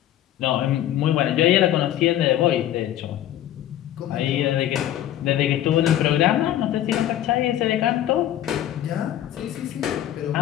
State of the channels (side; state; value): right; quieter; 12.3 dB